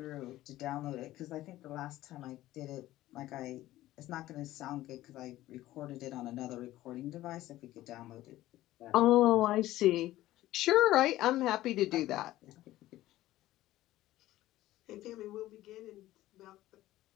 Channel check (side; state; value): right; quieter; 15.5 dB